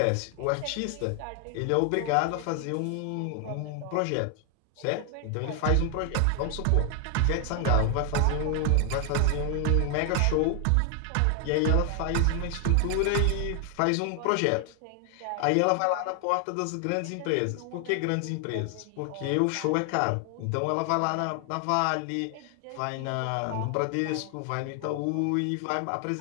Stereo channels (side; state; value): both; different; correlation 0.00